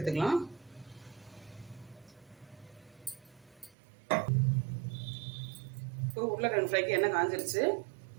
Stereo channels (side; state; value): left; drops out; at 3.8 s